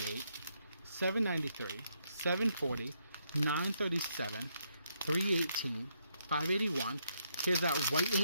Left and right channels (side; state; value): both; inverted; correlation -0.76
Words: 793, 740, 937, 318, 581. Here's that white